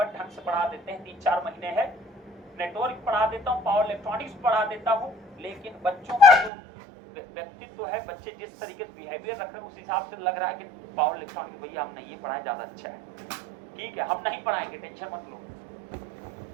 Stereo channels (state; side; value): drops out; left; at 6.5 s